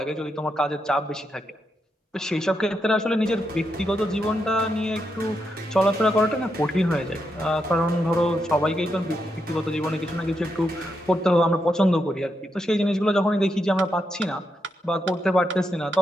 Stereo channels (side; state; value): both; normal; correlation 0.83